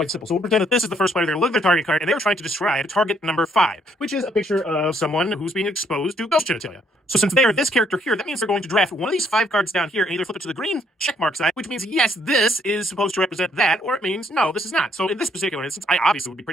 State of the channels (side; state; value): both; normal; correlation 0.69